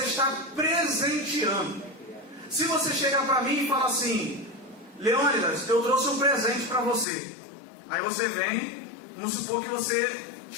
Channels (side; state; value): right; drops out; at 7.1 s